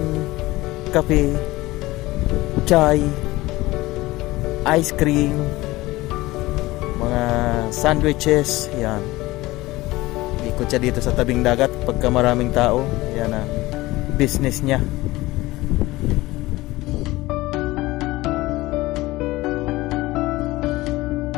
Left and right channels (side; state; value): right; quieter; 19.2 dB